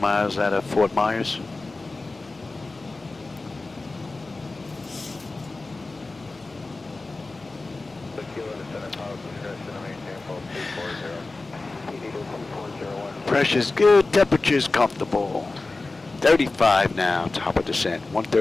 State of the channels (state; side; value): quieter; right; 3.4 dB